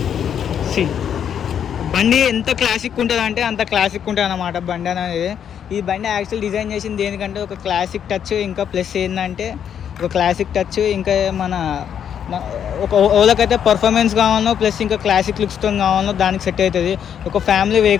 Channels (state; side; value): quieter; right; 8.7 dB